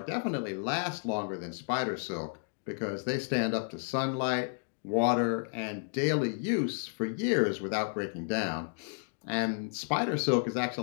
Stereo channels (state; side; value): silent; right; digital silence